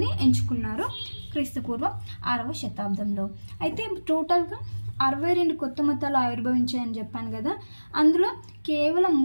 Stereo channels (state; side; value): inverted; both; correlation -1.00